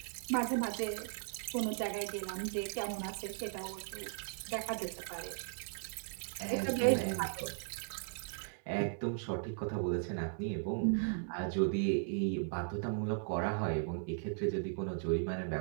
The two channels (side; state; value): left; silent; digital silence